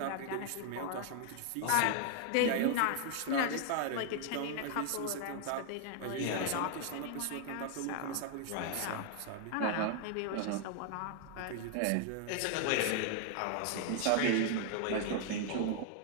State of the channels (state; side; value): different; both; correlation 0.00